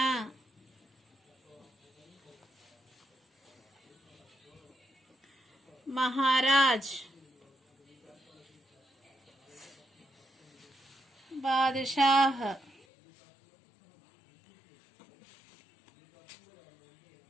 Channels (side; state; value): right; drops out; at 12.9 s